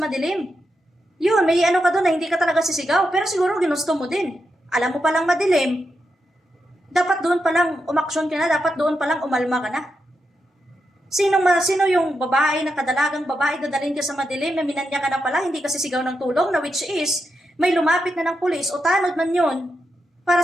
madilim. Yun, may ano ka doon na hindi ka talaga sisigaw, pero siguro ginusto mo din. Alam mo palang madilim, dapat doon palang umaksyon ka na, dapat doon palang umalma ka na. Sino yung babae na kadalagang babae dadalhin ka sa madilim na minanya ka na pala, hindi ka sisigaw ng tulong, na which is, may lumapit na ng pulis o tanod man yun, para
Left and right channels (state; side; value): normal; both; correlation 0.85